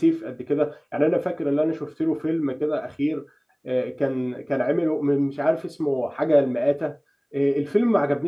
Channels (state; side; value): identical; both; correlation 1.00